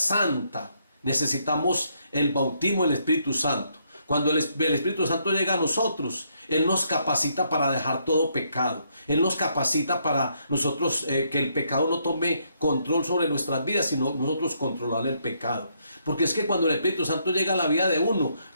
necesitamos el bautismo del Espíritu Santo. Cuando el Espíritu Santo llega a nosotros, Él nos capacita para dejar todo pecado. Él nos capacita para nosotros que el pecado no tome control sobre nuestras vidas, sino nosotros controlar el pecado. Porque es que cuando el Espíritu Santo llega a la vida de uno,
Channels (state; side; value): inverted; both; correlation -0.73